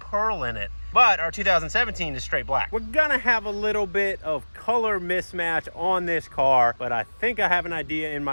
in it. But our 2017 is straight black. We're gonna have a little bit of color mismatch on this car, but I think I have an idea in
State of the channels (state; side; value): inverted; both; correlation -1.00